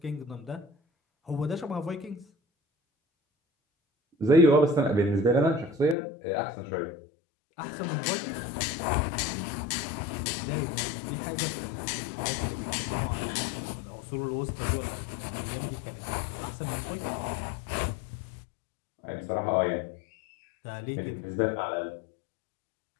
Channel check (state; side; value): drops out; right; at 6.0 s